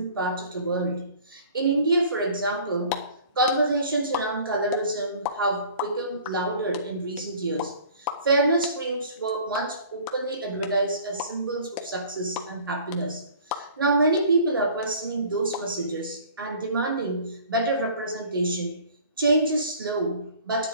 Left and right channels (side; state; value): both; inverted; correlation -0.49